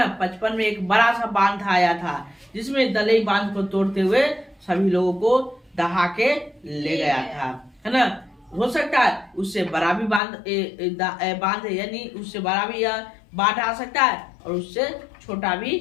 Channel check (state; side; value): drops out; right; at 10.2 s